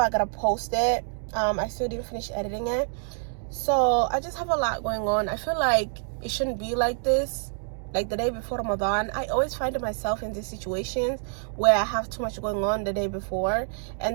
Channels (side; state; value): left; silent; 60 dB below the other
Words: gotta post it. I still didn't finish editing it, so I just have a lot going on. I feel like it shouldn't be like this. Like the day before Ramadan, I always find myself in these situations where I have too much going on the day before,